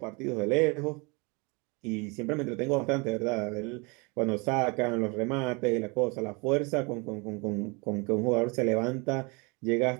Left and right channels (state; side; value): quieter; left; 29.3 dB